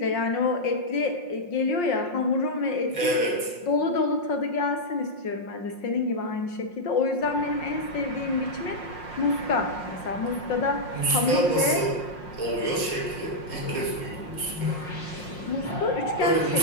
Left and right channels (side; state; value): right; late; 5.6 ms